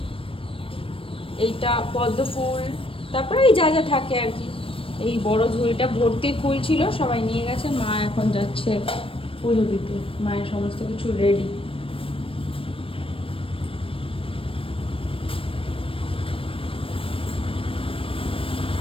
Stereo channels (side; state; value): right; late; 0.26 ms